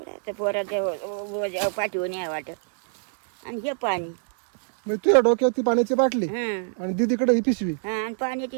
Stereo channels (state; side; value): silent; left; digital silence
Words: आता पोराच्या पाठीवर नाही वाटत. आणि हे पाणी. म्हणजे तुझ्या डोक्यात ती पाण्याची बाटली हां आणि दीदीकडे ही पिशवी. हां, आणि